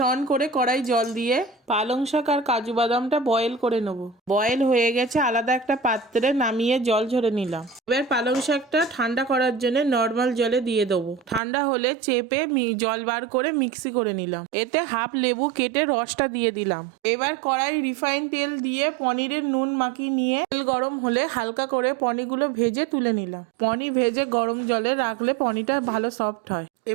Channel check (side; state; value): left; drops out; at 11.4 s